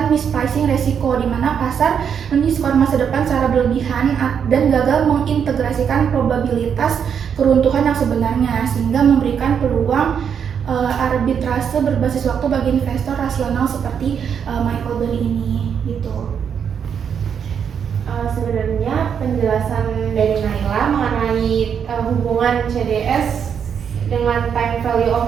mispricing risiko di mana pasar mendiskon masa depan secara berlebihan dan gagal mengintegrasikan probabilitas keruntuhan yang sebenarnya, sehingga memberikan peluang arbitrase berbasis waktu bagi investor rasional seperti Michael Burry ini gitu. Sebenarnya penjelasan dari Naila mengenai hubungan CDS dengan time value of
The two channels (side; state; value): left; quieter; 7.6 dB